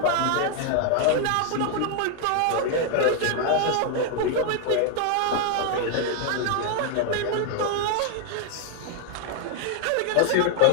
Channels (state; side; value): different; both; correlation 0.00